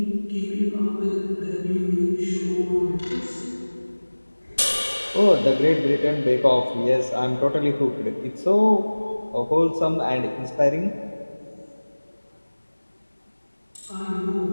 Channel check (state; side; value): inverted; both; correlation -1.00